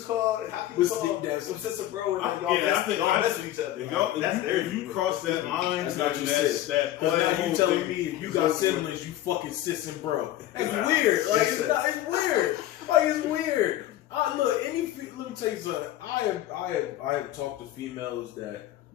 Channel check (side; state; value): right; quieter; 13.6 dB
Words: call some sister bro and like, y'all mess with each other? If you cross that line, that's not your sis. Because now you telling me if you got siblings, you fucking sis and bro. That's weird. Like it's weird. Like it's weird. Look, let me tell you something. I have talked to females that,